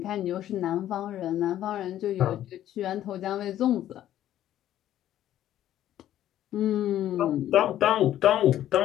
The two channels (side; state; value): right; quieter; 12.2 dB